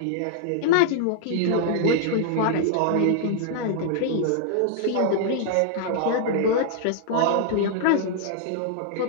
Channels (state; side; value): different; both; correlation -0.01